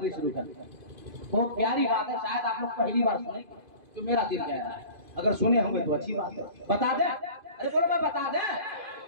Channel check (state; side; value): late; left; 2.5 ms